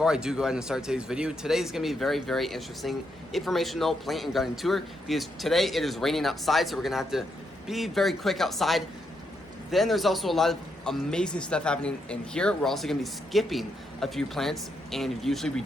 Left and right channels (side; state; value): both; normal; correlation 0.80